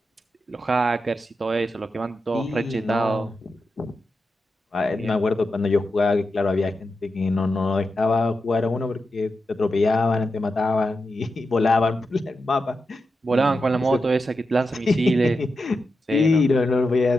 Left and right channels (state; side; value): normal; both; correlation 0.88